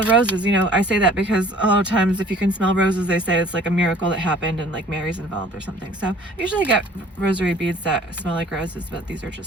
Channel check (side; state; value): both; normal; correlation 0.52